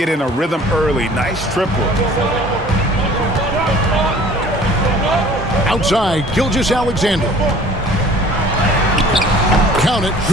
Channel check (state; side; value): normal; both; correlation 0.50